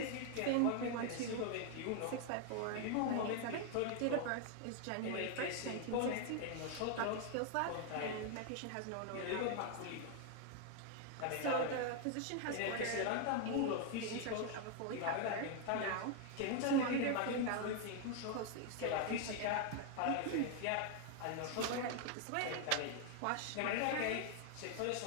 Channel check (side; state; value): both; different; correlation 0.00